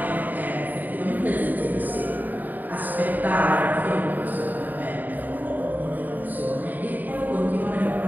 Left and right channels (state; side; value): late; left; 0.086 ms